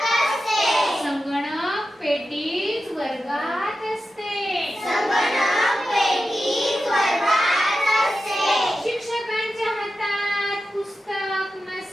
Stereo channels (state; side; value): normal; both; correlation 0.91